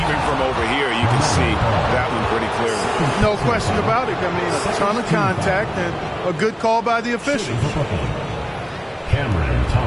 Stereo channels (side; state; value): both; identical; correlation 1.00